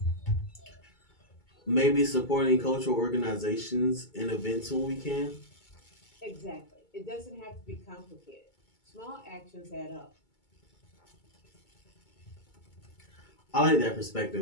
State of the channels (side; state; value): right; late; 2.2 ms